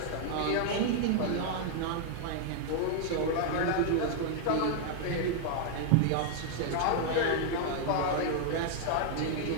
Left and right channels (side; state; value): both; different; correlation 0.00